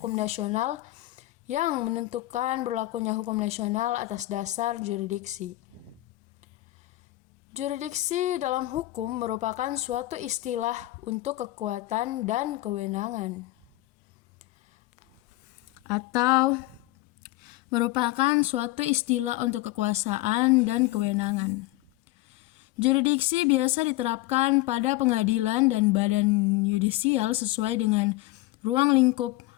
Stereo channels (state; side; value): quieter; right; 18.1 dB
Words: nasional yang menentukan berlakunya hukum nasional atas dasar jurisdiksi. Jurisdiksi dalam hukum merupakan suatu istilah untuk kekuatan dan kewenangan, atau merupakan suatu istilah untuk kekuasaan dan kewenangan. Jurisdiksi biasa diterapkan pada pengadilan dan badan yudisial sesuai dengan ruang lingkup